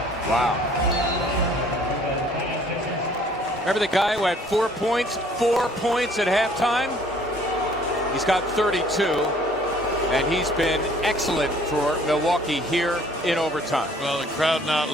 Wow. Remember the guy who had 4 points at halftime? He's got 32, and he's been excellent for Milwaukee here in overtime. Well, the crowd not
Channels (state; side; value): normal; both; correlation 0.57